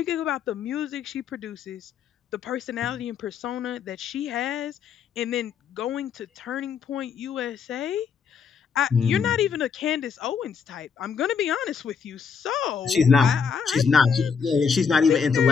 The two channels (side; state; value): right; quieter; 6.3 dB